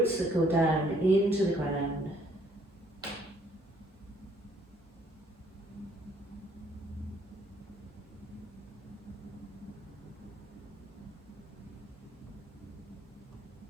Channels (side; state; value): both; normal; correlation 0.64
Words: that go down into the ground.